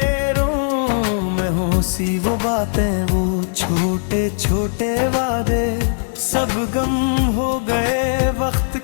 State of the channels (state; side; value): silent; right; digital silence